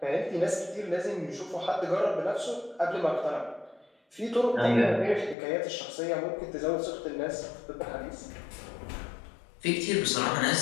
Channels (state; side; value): drops out; right; at 5.4 s